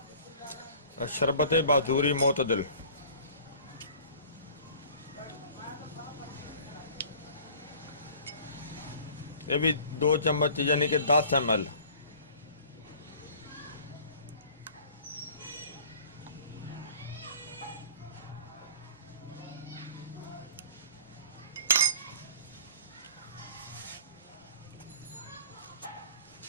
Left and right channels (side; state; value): both; inverted; correlation -0.47